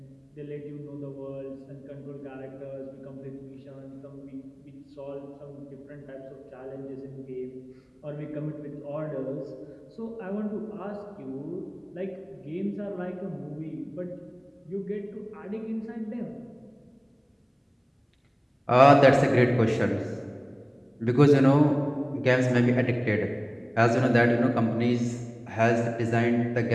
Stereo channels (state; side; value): identical; both; correlation 1.00